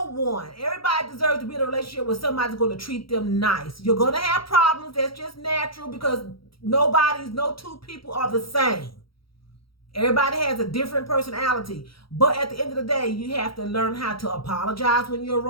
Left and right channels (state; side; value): late; right; 0.75 ms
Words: one. Everybody deserves to be in a relationship where somebody's going to treat them nice. You're going to have problems. That's just natural because no two people are the same. Everybody has a different personality. But at the end of the day, you have to learn how to apologize when you're